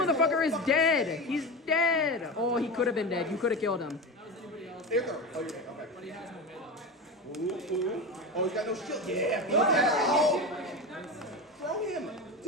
is dead. He's dead. Oh, he could have been dead. You could have killed him. There you go. Oh, yeah. Okay. Ooh. Oh, he's got no shield. Yeah. Oh. Throw him.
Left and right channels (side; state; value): both; normal; correlation 0.23